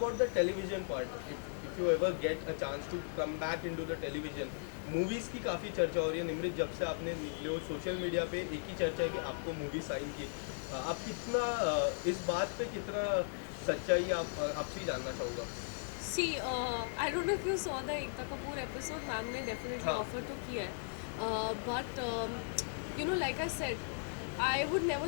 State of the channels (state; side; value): silent; right; digital silence